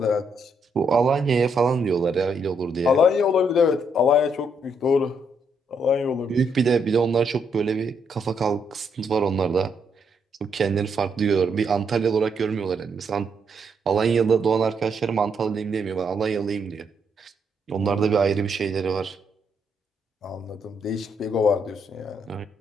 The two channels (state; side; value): normal; both; correlation 0.75